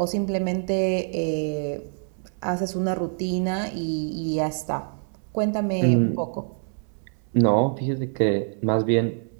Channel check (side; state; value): left; silent; 60 dB below the other